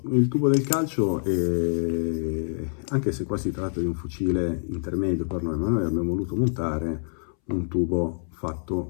Il tubo del calcio anche se qua si tratta di un fucile intermedio per noi, ma noi abbiamo voluto montare un tubo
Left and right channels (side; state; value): right; silent; 61 dB below the other